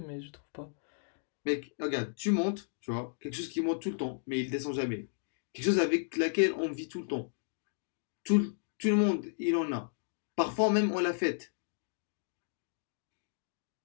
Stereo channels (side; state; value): right; silent; digital silence